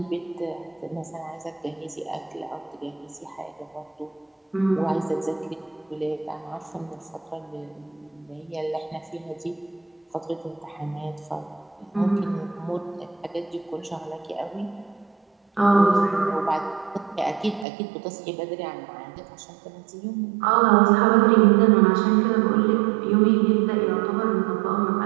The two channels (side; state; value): left; drops out; at 17.7 s